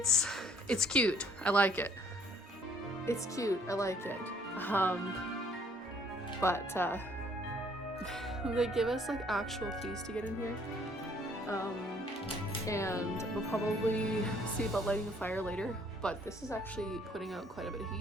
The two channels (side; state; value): both; normal; correlation 0.62